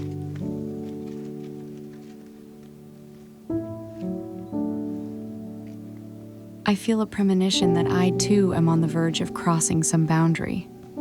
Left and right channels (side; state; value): both; identical; correlation 1.00